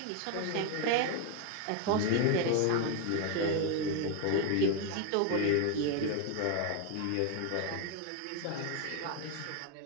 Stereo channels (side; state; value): both; different; correlation 0.01